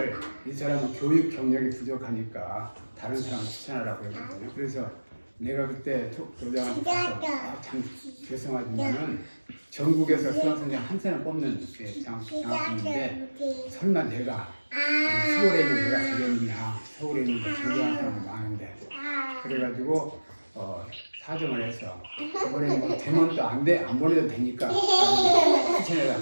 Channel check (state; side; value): inverted; both; correlation -1.00